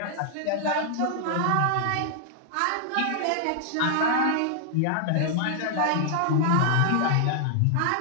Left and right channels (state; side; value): different; both; correlation 0.00